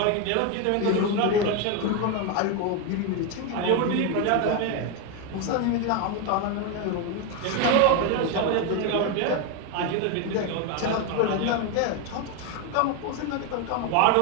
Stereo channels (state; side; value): different; both; correlation 0.02